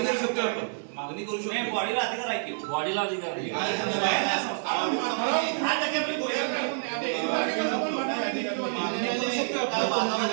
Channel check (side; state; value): left; silent; digital silence